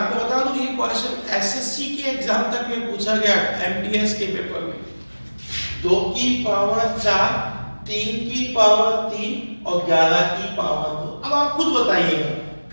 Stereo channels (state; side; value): inverted; both; correlation -1.00